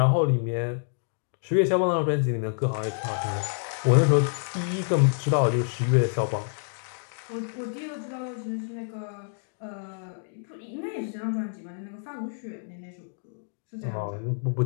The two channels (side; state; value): right; silent; digital silence